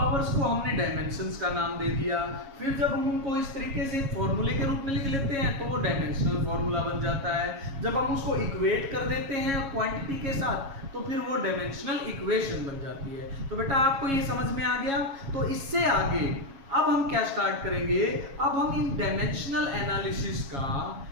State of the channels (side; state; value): left; late; 7.3 ms